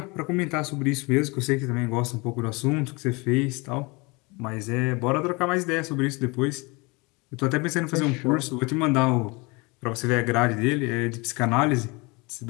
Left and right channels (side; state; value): right; quieter; 26.9 dB